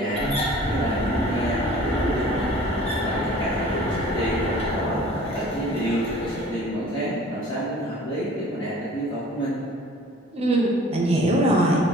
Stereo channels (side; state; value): both; normal; correlation 0.48